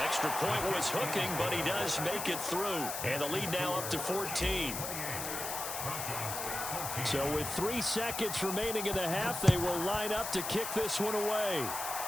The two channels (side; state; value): left; noise; hiss, 5 dB below the sound